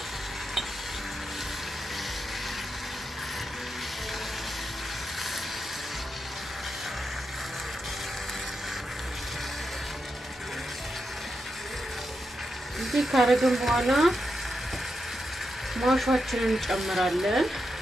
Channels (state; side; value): normal; both; correlation 0.86